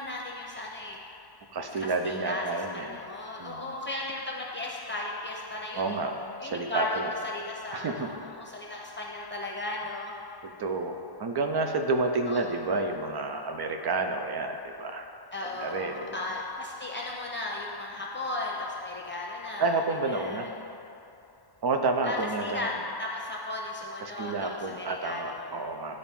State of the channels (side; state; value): left; late; 1.1 ms